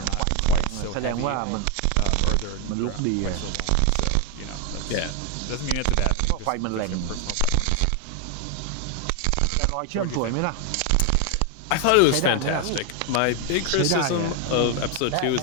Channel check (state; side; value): different; both; correlation 0.01